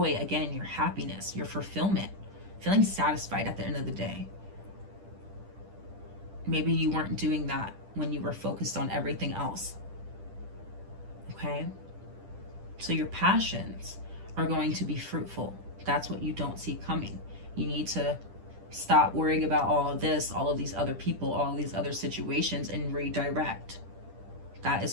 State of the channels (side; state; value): left; late; 10 ms